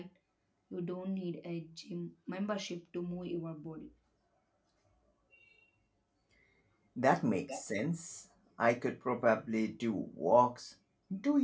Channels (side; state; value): both; identical; correlation 1.00